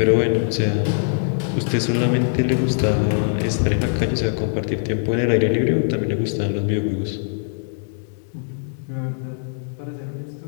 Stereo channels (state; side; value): silent; right; digital silence